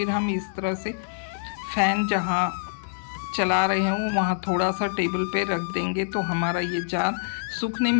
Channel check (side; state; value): right; silent; 61 dB below the other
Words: हम इस तरह से फ़ैन जहाँ चला रहे हैं वहाँ थोड़ा सा टेबल पे रख देंगे तो हमारा ये जार सूखने